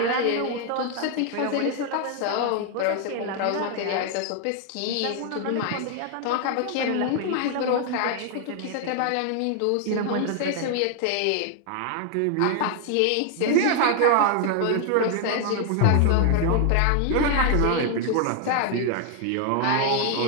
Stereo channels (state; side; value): different; both; correlation 0.00